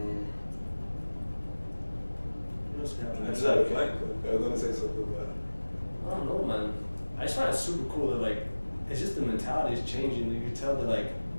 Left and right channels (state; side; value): inverted; both; correlation -1.00